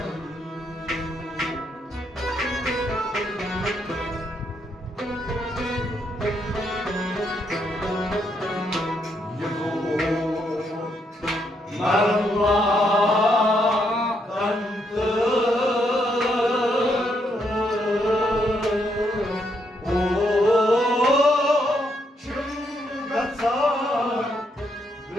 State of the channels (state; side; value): normal; both; correlation 0.76